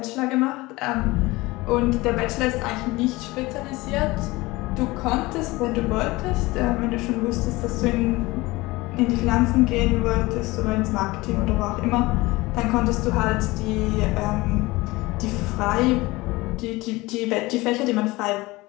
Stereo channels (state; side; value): quieter; right; 21.1 dB